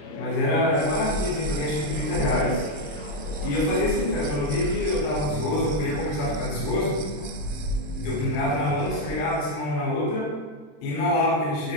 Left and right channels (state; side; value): late; right; 27 ms